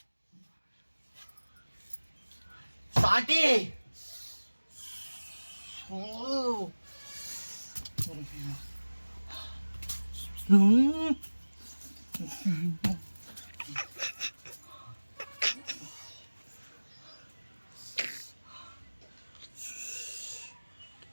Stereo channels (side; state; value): both; inverted; correlation -1.00